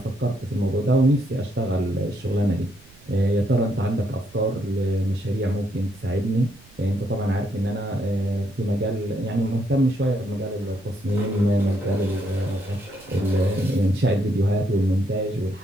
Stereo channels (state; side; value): noise; right; rumble, 26 dB below the sound